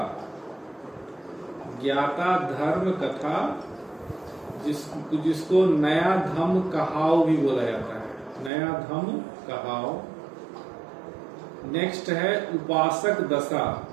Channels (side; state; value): left; drops out; at 8.5 s